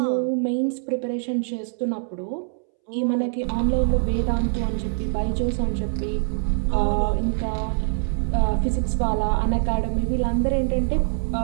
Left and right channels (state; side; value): silent; left; 63 dB below the other